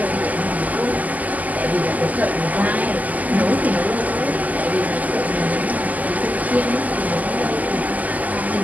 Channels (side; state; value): left; late; 0.078 ms